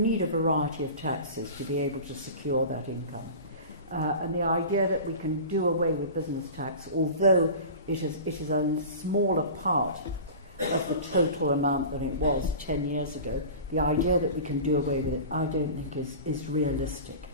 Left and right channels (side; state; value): both; inverted; correlation -0.35